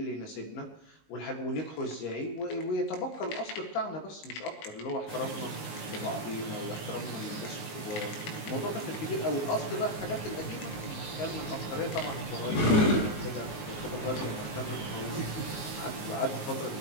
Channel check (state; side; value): late; right; 19 ms